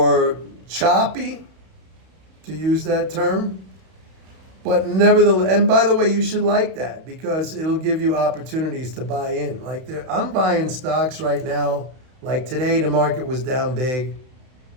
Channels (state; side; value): late; left; 31 ms